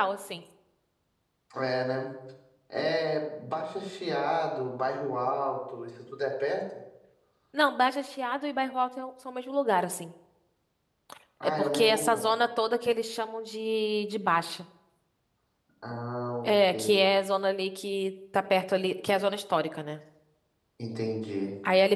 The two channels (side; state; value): both; identical; correlation 1.00